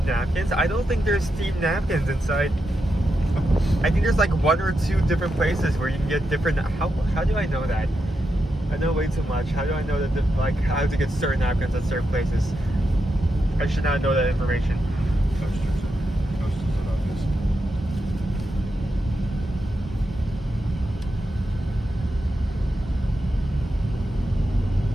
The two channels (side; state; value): both; normal; correlation 0.86